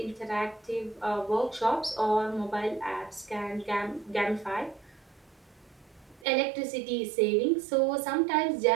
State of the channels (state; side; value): drops out; left; at 6.2 s